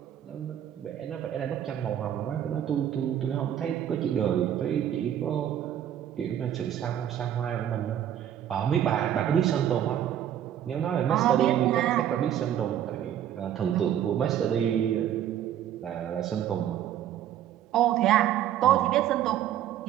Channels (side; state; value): left; quieter; 10.7 dB